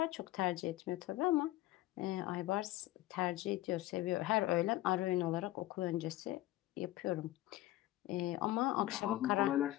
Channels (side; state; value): right; quieter; 16.2 dB